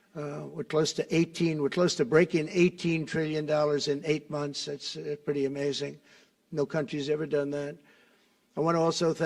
we're close to breaking $18 trillion in 8 months. That's pretty amazing. No country's ever done that. I want to also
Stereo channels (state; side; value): identical; both; correlation 1.00